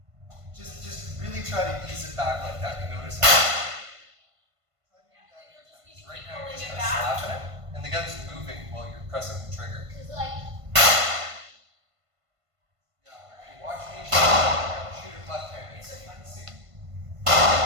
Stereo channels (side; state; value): left; late; 1.5 ms